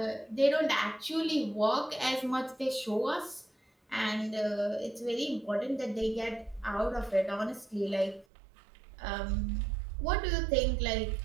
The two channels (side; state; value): left; drops out; at 8.2 s